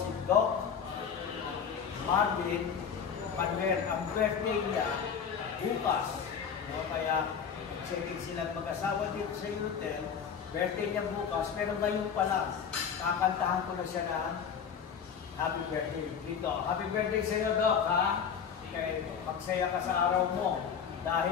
Doc Marvin Panwer. Ang birthday niya bukas. Kaya check-in silang mag-asawa dito sa hotel. Birthday niya bukas, pero ngayon pa lang, kakantahan ko na siya ng happy birthday dito. Happy birthday sa iyo, Doc, ha? Kaya magsaya ka sa araw mo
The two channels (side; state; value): right; quieter; 7.1 dB